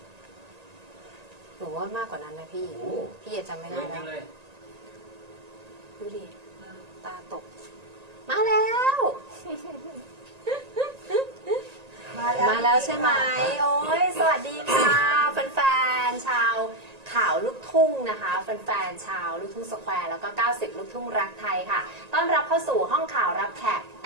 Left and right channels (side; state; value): left; late; 1.9 ms